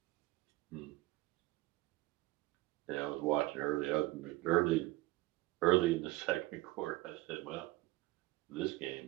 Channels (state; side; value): quieter; left; 19.1 dB